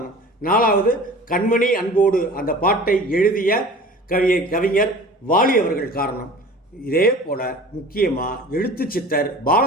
4வது கண்மணி அன்போடு அந்த பாட்டை எழுதிய கவிஞர் வாலி அவர்கள் காரணம். இதே போல முக்கியமாக எழுத்தாளர்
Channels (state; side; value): normal; both; correlation 0.42